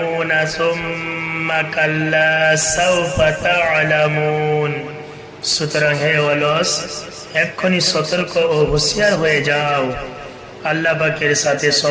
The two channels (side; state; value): both; identical; correlation 1.00